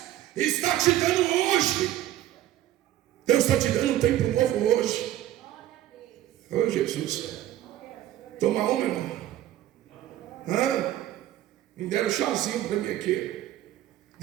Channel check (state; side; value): quieter; left; 13.2 dB